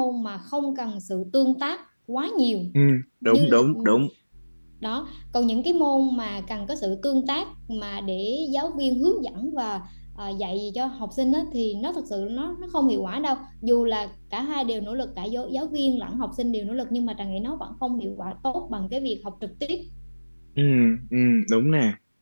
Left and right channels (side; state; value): both; inverted; correlation -1.00